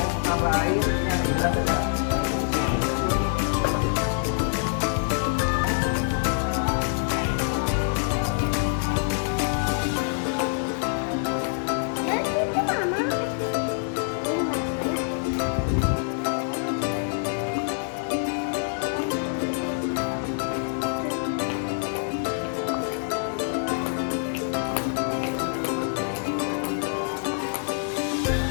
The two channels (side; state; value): right; silent; digital silence